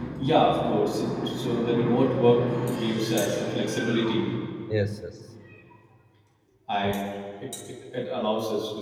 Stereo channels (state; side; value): identical; both; correlation 1.00